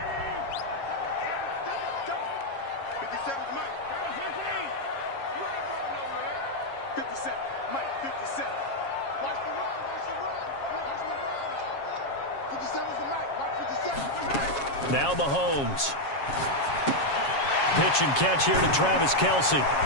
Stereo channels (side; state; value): right; late; 7.3 ms